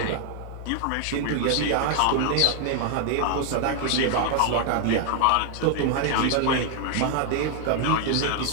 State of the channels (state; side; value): different; both; correlation 0.00